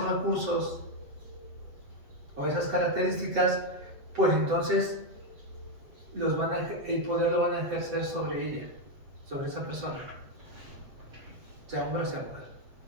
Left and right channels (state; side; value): late; left; 8.0 ms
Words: recursos o esas características, pues entonces el poder lo van a ejercer sobre ella, sobre esa persona, sea hombre o sea mujer.